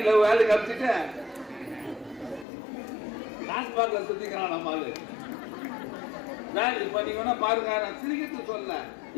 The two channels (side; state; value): right; drops out; at 2.5 s